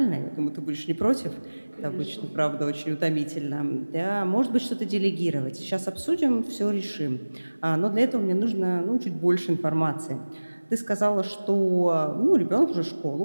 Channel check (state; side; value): inverted; both; correlation -1.00